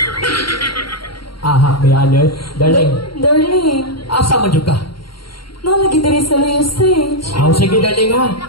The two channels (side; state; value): right; late; 0.73 ms